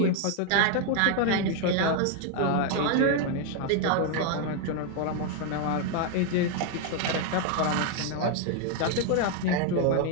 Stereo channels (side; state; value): both; different; correlation 0.01